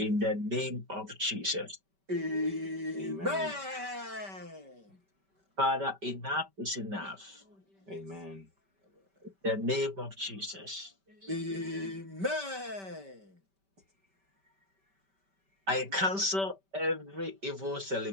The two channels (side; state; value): left; late; 5.2 ms